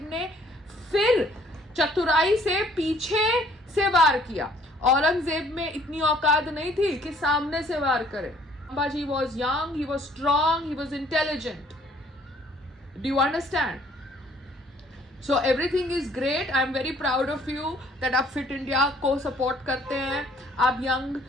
ने फिर चतुराई से पीछे से वार किया। औरंगजेब में इतनी औकात नहीं थी कि सामने से वार करे। Sambhaji was young, he was strong, he was intelligent. Do you understand? So everything is great. I am very proud of you that आप Fit India को support करते हैं, आप young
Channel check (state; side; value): normal; both; correlation 0.59